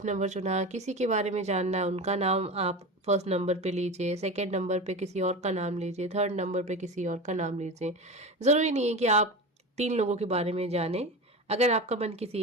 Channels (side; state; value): both; normal; correlation 0.27